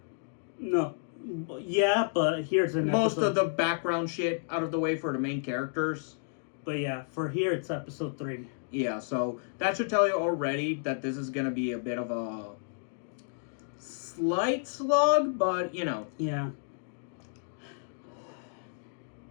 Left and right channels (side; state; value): right; silent; digital silence